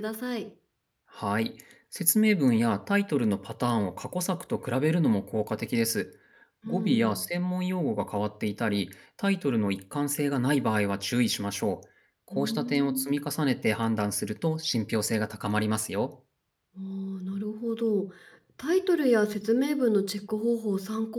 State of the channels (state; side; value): identical; both; correlation 1.00